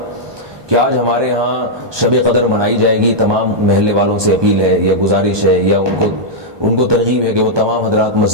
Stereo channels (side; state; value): left; late; 1.2 ms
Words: کہ آج ہمارے ہاں شب قدر منائی جائے گی، تمام محلے والوں سے اپیل ہے یا گزارش ہے یا ان کو ترغیب ہے کہ وہ تمام حضرات